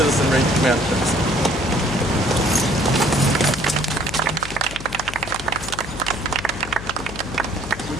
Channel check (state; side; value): noise; left; hum, 11 dB below the sound